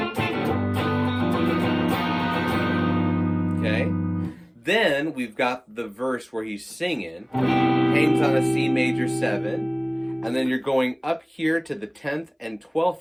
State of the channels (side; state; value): both; identical; correlation 1.00